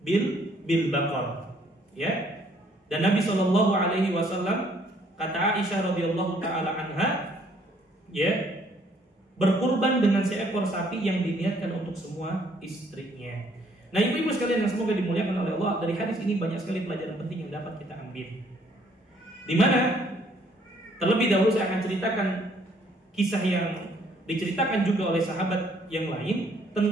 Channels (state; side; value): normal; both; correlation 0.64